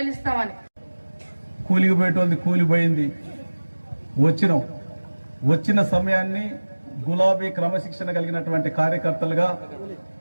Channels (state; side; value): inverted; both; correlation -1.00